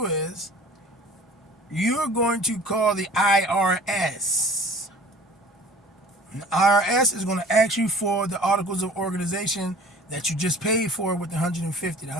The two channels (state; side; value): normal; both; correlation 0.46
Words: is you're going to call the IRS. And the IRS is going to ask you for the articles of organization that you just paid for with the $150. The